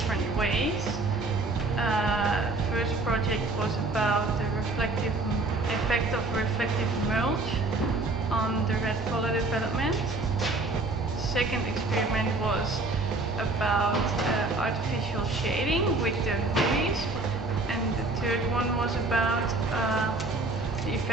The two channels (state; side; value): quieter; left; 3.2 dB